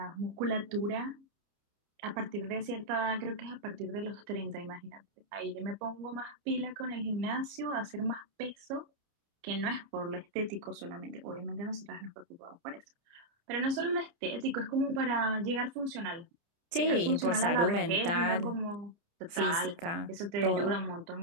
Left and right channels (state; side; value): late; left; 29 ms